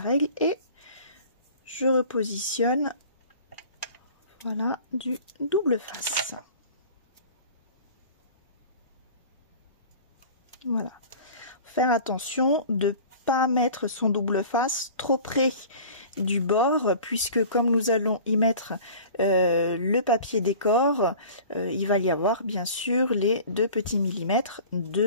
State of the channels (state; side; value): inverted; both; correlation -0.42